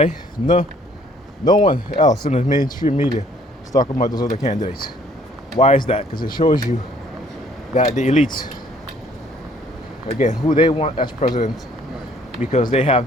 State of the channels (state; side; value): normal; both; correlation 0.60